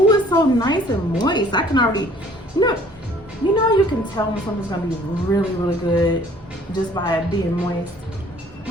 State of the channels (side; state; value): both; normal; correlation 0.56